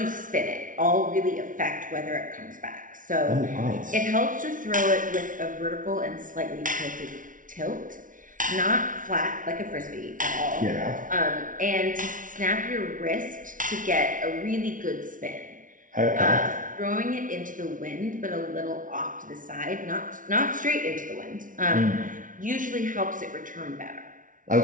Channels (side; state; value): left; late; 0.38 ms